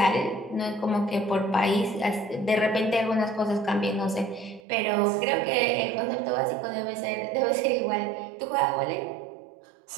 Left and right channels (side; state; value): left; drops out; at 4.6 s